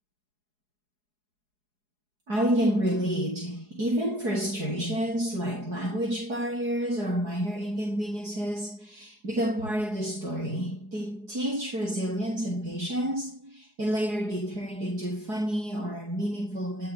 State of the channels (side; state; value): left; late; 4.8 ms